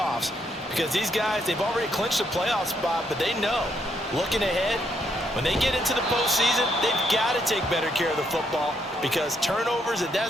Because these guys, they've already clinched a playoff spot, but they know, looking ahead, when they get into the postseason, they've got to take better care of the football because turnovers in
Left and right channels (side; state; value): both; normal; correlation 0.75